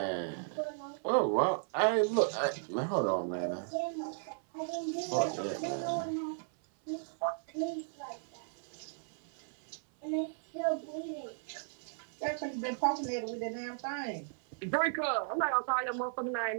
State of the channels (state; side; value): silent; left; 54 dB below the other